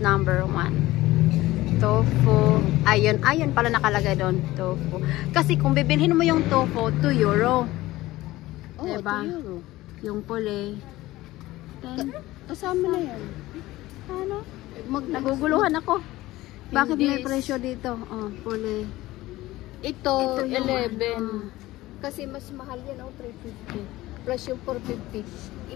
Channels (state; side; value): quieter; right; 17.5 dB